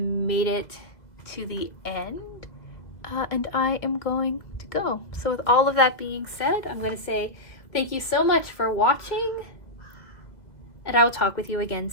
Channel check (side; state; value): right; late; 1.9 ms